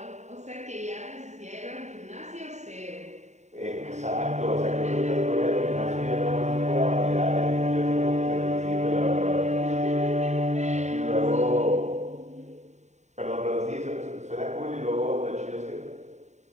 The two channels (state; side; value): late; left; 0.34 ms